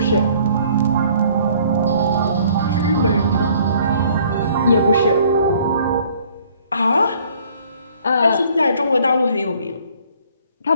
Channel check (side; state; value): both; inverted; correlation -0.58